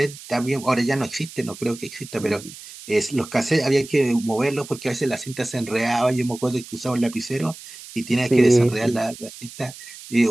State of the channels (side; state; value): right; noise; hiss, 16 dB below the sound